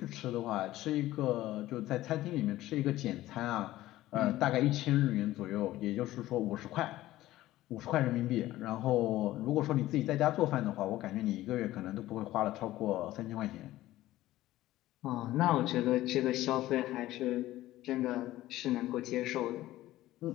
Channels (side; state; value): right; quieter; 15.7 dB